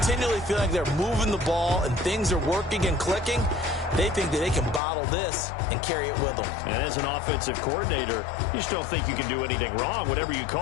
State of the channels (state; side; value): drops out; right; at 4.8 s